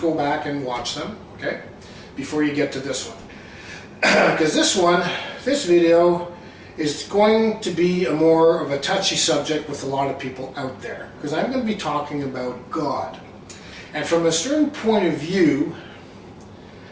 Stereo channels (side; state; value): both; identical; correlation 1.00